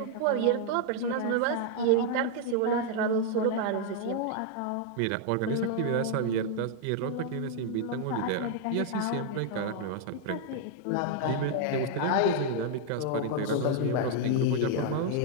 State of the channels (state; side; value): different; both; correlation 0.00